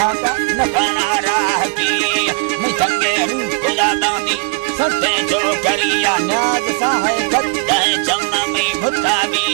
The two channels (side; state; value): left; quieter; 30.9 dB